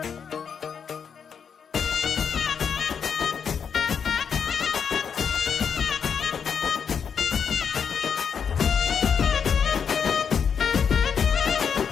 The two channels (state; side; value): quieter; right; 6.9 dB